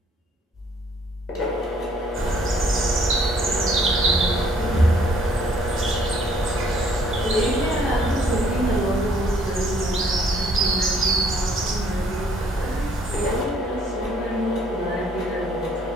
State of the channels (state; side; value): normal; both; correlation 0.63